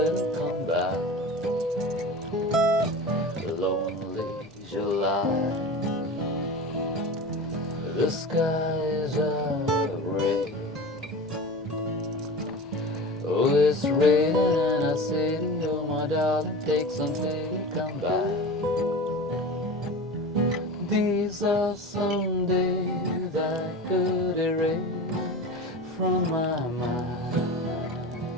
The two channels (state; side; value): normal; both; correlation 0.32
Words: Come back. Lonely July, the skies are gray. Oh, it's raining and I say to you, my darling, take some pity, come back. These are some days I could erase from my mind,